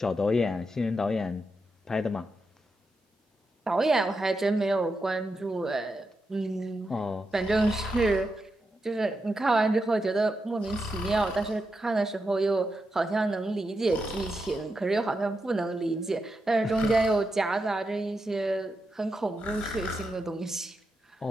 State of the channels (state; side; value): normal; both; correlation 0.86